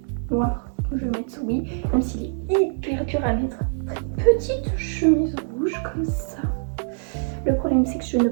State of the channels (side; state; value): left; silent; digital silence